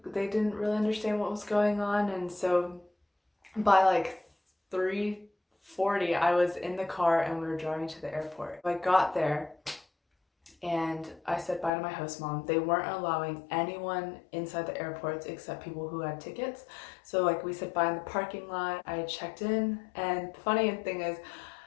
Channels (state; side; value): drops out; right; at 11.7 s